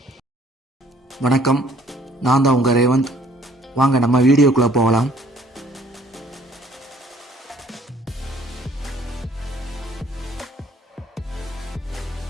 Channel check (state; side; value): normal; both; correlation 0.58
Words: நான் தான் உங்கள் ரேவந்த். வாங்க நம்ம வீடியோக்குள்ளே போகலாம்.